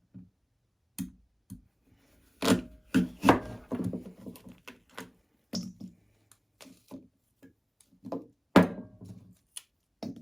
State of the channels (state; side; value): identical; both; correlation 1.00